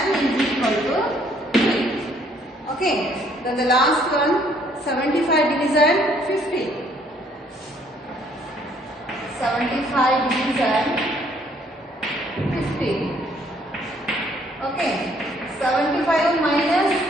is equal to 3. Okay. Then the last one, 75 division 50. 75 division 50. Okay. 75 minus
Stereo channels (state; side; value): normal; both; correlation 0.64